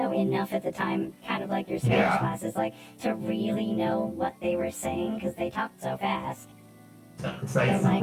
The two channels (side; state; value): both; identical; correlation 1.00